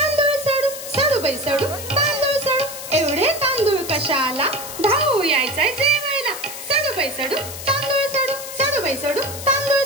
सडू सडू बाई सडू तांदूळ सडू एवढे तांदूळ कशाला धावू यायचाय जेवायला सडू बाई सडू तांदूळ सडू सडू बाई सडू तांदूळ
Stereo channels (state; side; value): noise; left; hiss, 10 dB below the sound